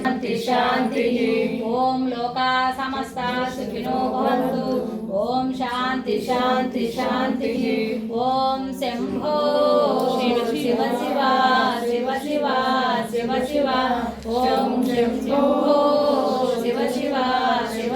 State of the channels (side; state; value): both; identical; correlation 1.00